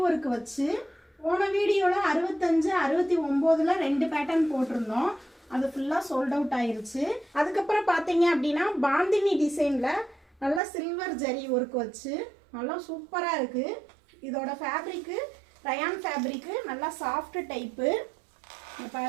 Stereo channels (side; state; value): left; drops out; at 10.6 s